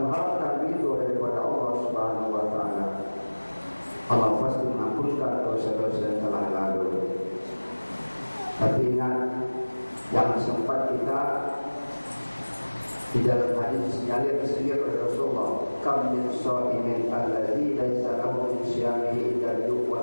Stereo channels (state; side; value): inverted; both; correlation -1.00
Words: ridho daripada Allah Subhanahu wa taala, Allah pasti mengampunkan dosa-dosa yang telah lalu. Tapi ingat, yang sempat kita di dalam hadis sinyalir oleh Rasulullah, kam min shaimin alladzi laisa lahu min siyamihi illa al-yuq